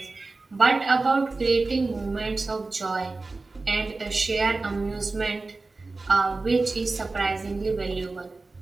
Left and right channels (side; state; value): left; quieter; 3.6 dB